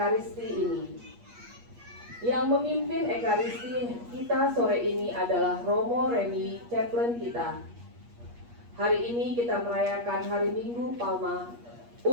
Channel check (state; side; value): late; left; 8.4 ms